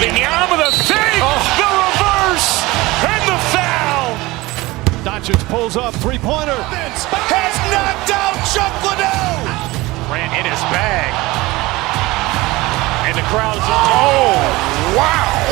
the fake, the reverse, and the foul. Doncic pulls up, three-pointer. Has knocked out Chuck Liddell. Grant in his bag. And the crowd is, oh, wow.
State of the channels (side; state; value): left; quieter; 20.6 dB